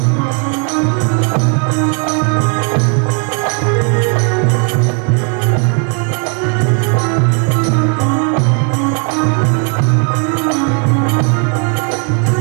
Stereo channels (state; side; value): quieter; left; 39.5 dB